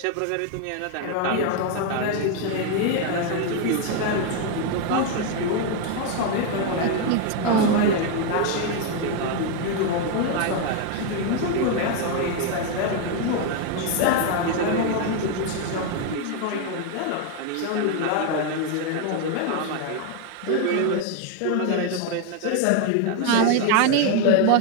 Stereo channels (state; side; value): different; both; correlation 0.01